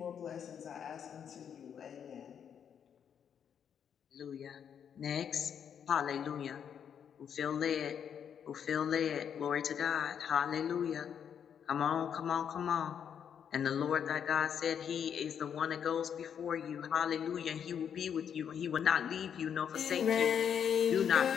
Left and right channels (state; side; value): quieter; right; 8.1 dB